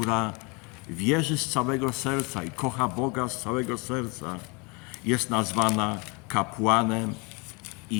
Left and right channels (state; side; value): quieter; right; 30.0 dB